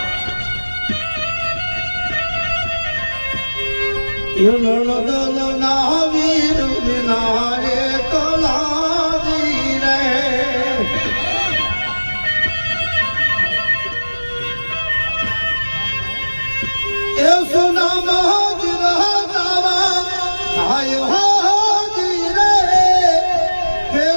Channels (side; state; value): both; inverted; correlation -1.00